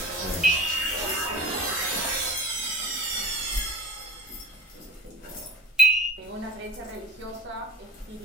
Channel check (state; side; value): normal; both; correlation 0.43